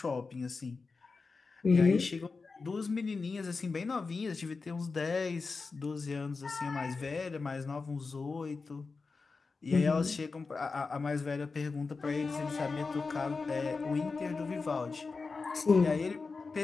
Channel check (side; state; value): right; quieter; 4.3 dB